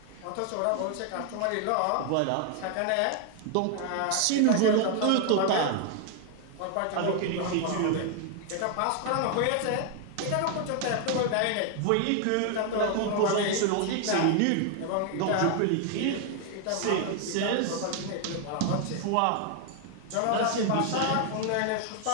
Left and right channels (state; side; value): different; both; correlation 0.00